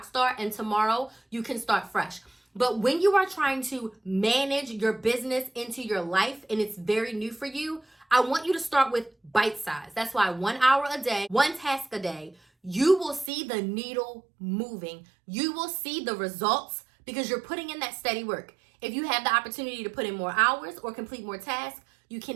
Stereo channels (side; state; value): left; drops out; at 13.3 s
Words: star, and tomorrow you can start fresh. But when you are trying to manage your business into your life and it's very new for you, I want you to start with bite size. That's why 1 hour a day, one task a day, you will see the needle moving. You will see the results because you're putting in that steady work. If you have the opportunity to put in more hours or complete more tasks, you